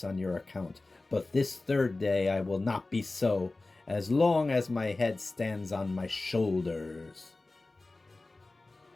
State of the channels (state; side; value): quieter; right; 3.2 dB